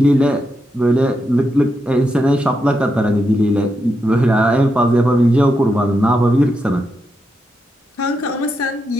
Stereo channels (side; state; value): both; normal; correlation 0.84